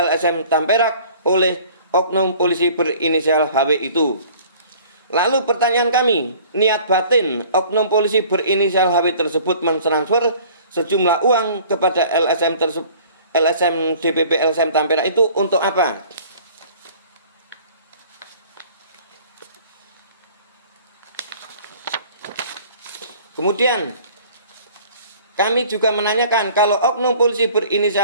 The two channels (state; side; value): inverted; both; correlation -0.50